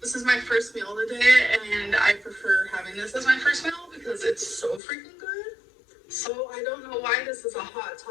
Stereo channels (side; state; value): right; drops out; at 4.8 s